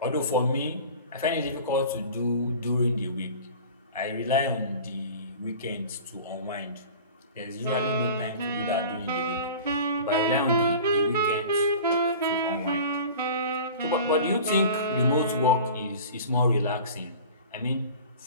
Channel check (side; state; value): both; inverted; correlation -0.39